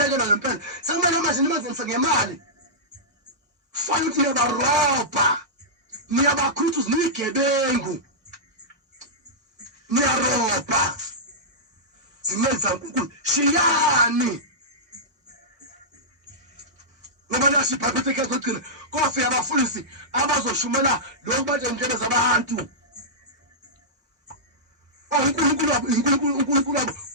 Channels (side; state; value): both; normal; correlation -0.14